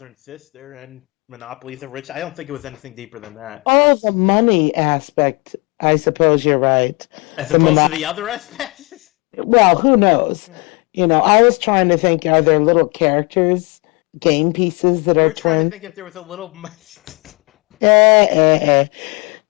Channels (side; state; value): right; quieter; 28.2 dB